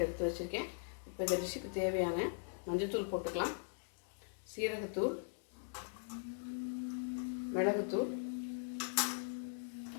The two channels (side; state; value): right; silent; digital silence